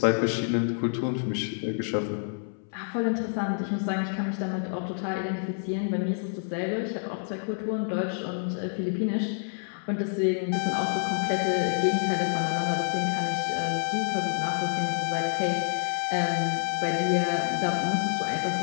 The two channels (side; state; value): right; silent; 59 dB below the other